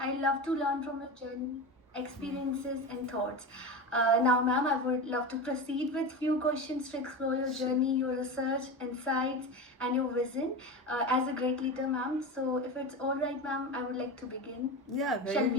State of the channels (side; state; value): both; normal; correlation 0.24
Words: love to learn from your journey, experiences, and thoughts. Now, ma'am, I would love to proceed with few questions to explore your journey, your research, insights, and your vision as a great leader, ma'am. So, if it's all right, ma'am, I would like to begin. Yeah, Shall very